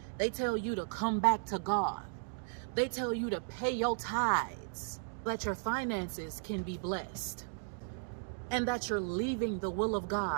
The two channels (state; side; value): silent; left; digital silence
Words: They tell you to come back to God. They tell you to pay your tithes, that your finances can be blessed, and that you're leaving the will of